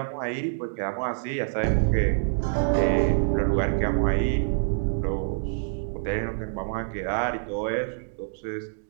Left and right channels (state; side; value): silent; left; digital silence